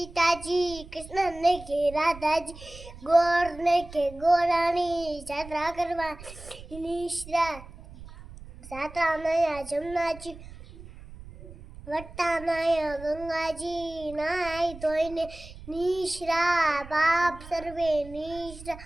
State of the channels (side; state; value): right; noise; rumble, 16 dB below the sound